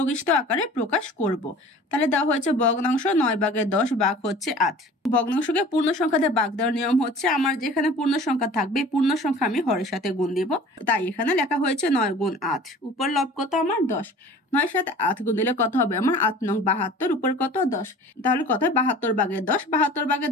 আকারে প্রকাশ করব। তাহলে দেওয়া হয়েছে ভগ্নাংশ 9 ভাগের 10 ভাগ হচ্ছে 8। ভগ্নাংশকে পূর্ণ সংখ্যা দিয়ে ভাগ দেওয়ার নিয়ম হচ্ছে আমার যেখানে পূর্ণ সংখ্যা থাকবে পূর্ণ সংখ্যা আমি হরের সাথে গুণ দিব। তাই এখানে লেখা হয়েছে 9 গুণ 8, উপর লব কত আমার? 10। 9 সাথে 8 গুণ দিলে কত হবে আমার? 8 নং 72, উপর কত? 10। তাহলে কত হয়? 72 ভাগের 10। 72 ভাগের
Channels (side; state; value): both; normal; correlation 0.44